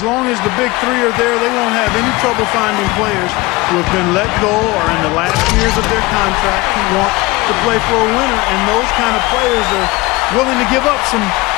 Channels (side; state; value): right; quieter; 22.2 dB